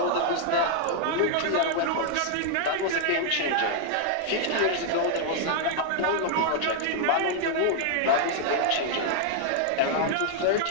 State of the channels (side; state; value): both; different; correlation -0.01